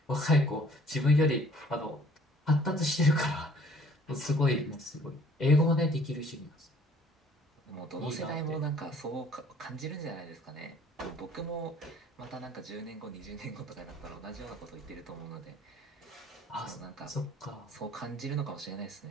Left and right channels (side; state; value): both; normal; correlation 0.57